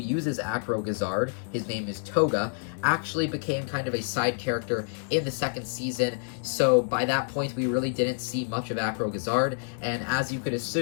Acro Gazard, his name is Tohga, actually became kind of a side character in the second season, so by that point we really didn't see much of Acro Gazard, and as you could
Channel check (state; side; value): silent; right; 56 dB below the other